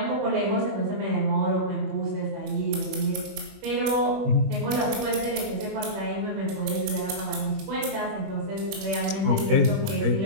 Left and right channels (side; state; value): left; late; 21 ms